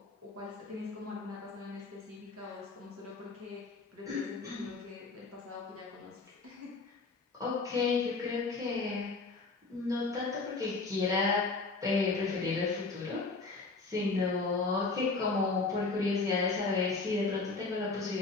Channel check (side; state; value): right; quieter; 3.9 dB